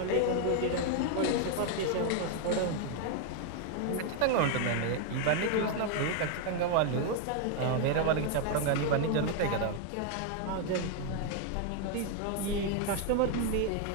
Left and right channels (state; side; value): different; both; correlation 0.00